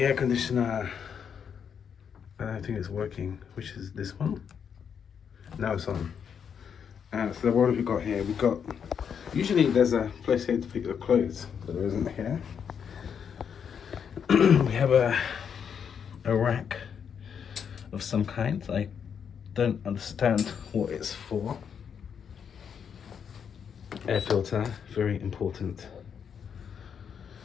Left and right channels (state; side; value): quieter; right; 7.4 dB